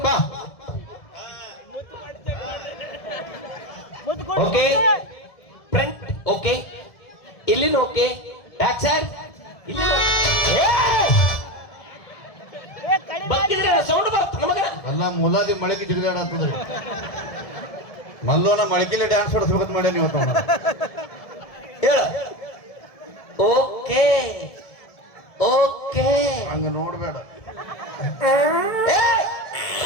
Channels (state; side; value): late; right; 1.7 ms